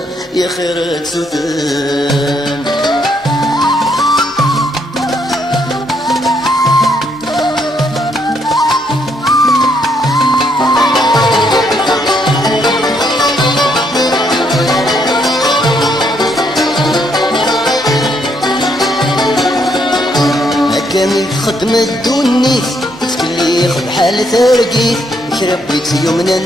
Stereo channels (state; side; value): normal; both; correlation 0.73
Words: يا خيرك سوتن كامل خدمة الدونيت تكلي خد حال ترقيت شربيت يومنا